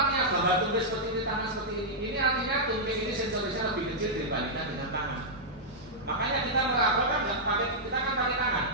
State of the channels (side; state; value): both; normal; correlation -0.08